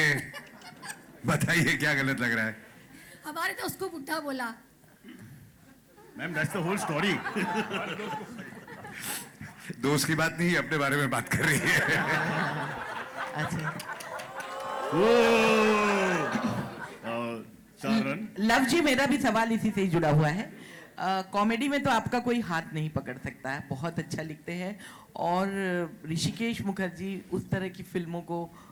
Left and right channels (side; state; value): both; identical; correlation 1.00